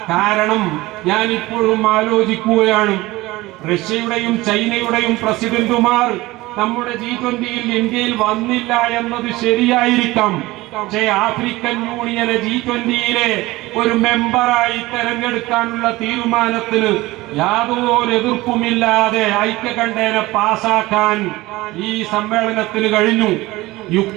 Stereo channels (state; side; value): quieter; left; 19.5 dB